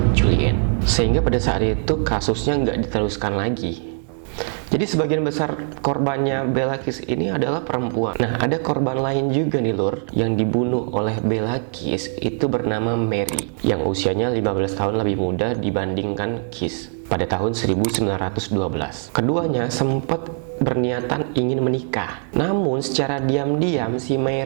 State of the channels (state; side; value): silent; left; 57 dB below the other